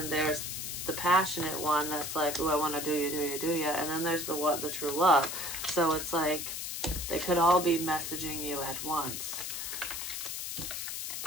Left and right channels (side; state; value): left; noise; hiss, 5 dB below the sound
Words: there's the passionate one that's like, oh, I want to do you. And then there's the true love. So it's like, they could all be messaging you at once.